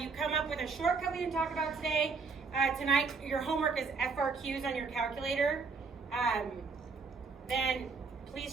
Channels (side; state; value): left; quieter; 4.7 dB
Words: come up with a shortcut we didn't talk about today, tonight your homework is FRQs on your calculator, then